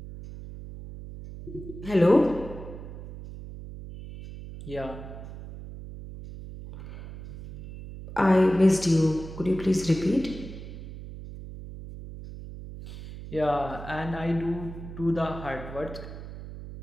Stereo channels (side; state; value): right; noise; hum, 12 dB below the sound